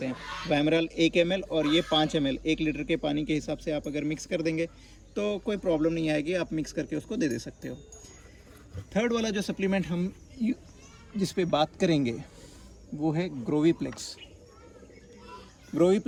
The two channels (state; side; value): identical; both; correlation 1.00